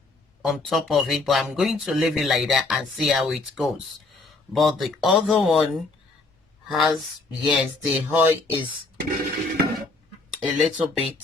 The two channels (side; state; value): right; quieter; 3.4 dB